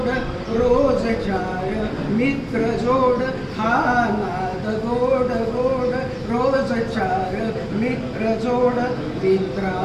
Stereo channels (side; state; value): both; identical; correlation 1.00